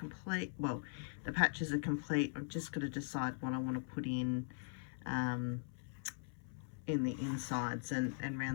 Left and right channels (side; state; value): right; silent; 51 dB below the other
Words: Well, the patches are complete. I've just got to decide what I want to put in the insides and